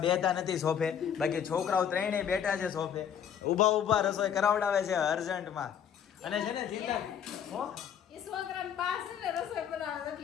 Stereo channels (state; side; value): quieter; right; 8.6 dB